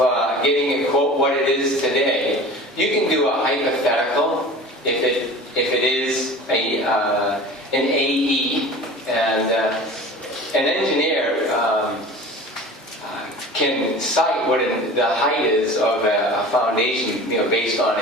getting a quote what it is today, you can do a hypothetical if it is an AE, and an engineer can cite what the height is of a foundation, based on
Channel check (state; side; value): normal; both; correlation 0.39